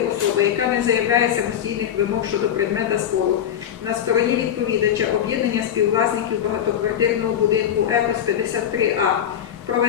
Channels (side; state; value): right; quieter; 9.7 dB